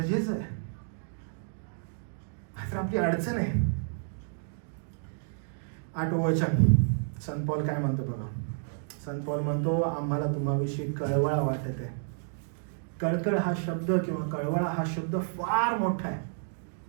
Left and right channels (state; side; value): silent; left; digital silence